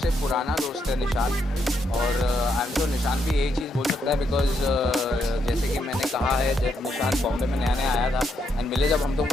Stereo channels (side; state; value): both; normal; correlation 0.77